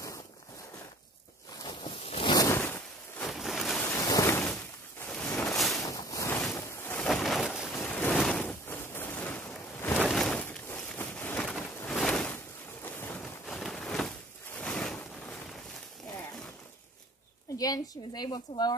Again, she was able to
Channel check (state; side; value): normal; both; correlation 0.51